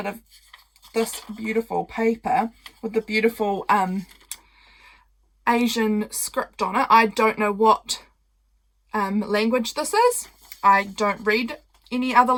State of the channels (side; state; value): both; identical; correlation 1.00